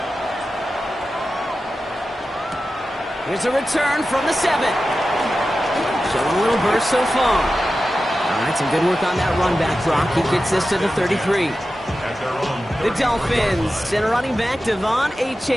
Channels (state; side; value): normal; both; correlation 0.93